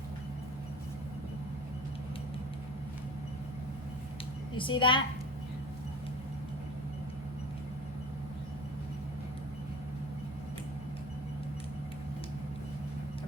You see that?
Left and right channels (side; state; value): both; normal; correlation 0.37